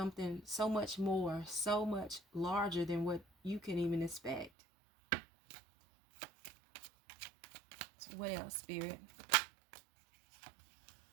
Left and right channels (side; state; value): left; drops out; at 4.5 s